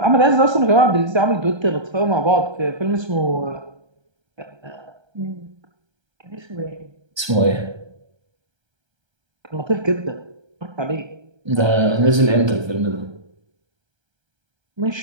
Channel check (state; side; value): late; left; 1.3 ms